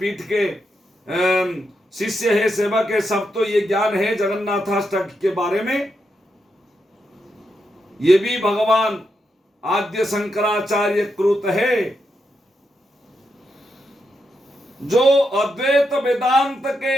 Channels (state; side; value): normal; both; correlation 0.84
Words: के शिष्य है, सेवक है, सब तो ये ज्ञान है जगन्नाथाष्टक के बारे में। ये भी भगवान आद्य शंकराचार्य कृत है, जो अद्वैत वेदांत